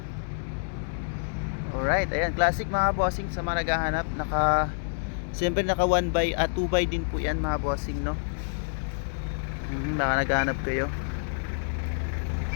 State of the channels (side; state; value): right; silent; digital silence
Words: Alright, ayan, classic mga bossing. Sa mga naghahanap, siyempre naka 1x at 2x din po yan mga bossing, no? Baka naghahanap kayo.